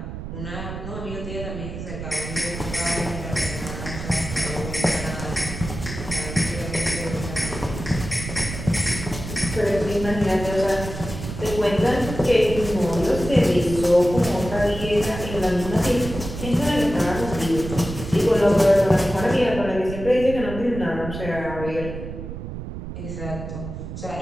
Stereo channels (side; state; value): right; noise; rumble, 8 dB below the sound